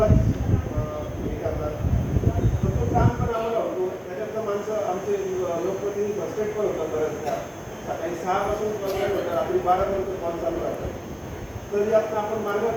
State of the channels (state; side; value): identical; both; correlation 1.00